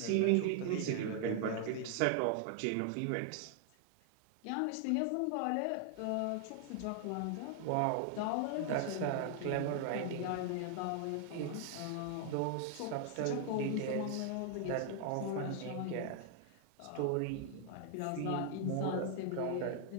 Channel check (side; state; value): both; different; correlation 0.00